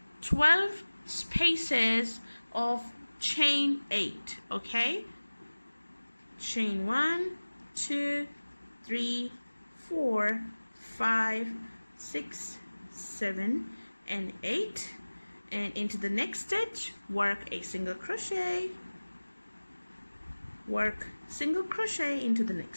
12 spaces of chain 8, okay? Chain 1, 2, 3, 4, 5, 6, 7, and 8. And into the next stitch, work a single crochet, work single crochet into the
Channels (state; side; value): inverted; both; correlation -1.00